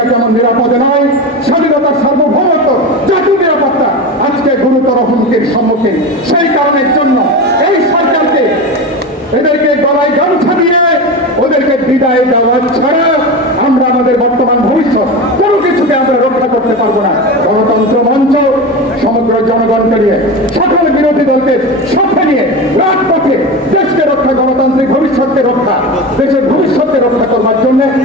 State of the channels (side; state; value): both; normal; correlation 0.24